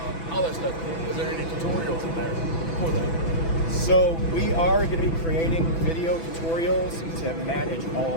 all that stuff. Is there any tutorials in there for that? So we are going to be creating video tutorials to manage all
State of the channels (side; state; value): right; late; 6.0 ms